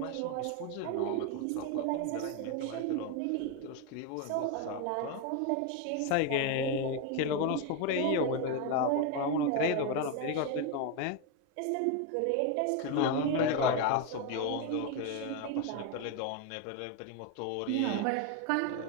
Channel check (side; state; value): both; different; correlation 0.02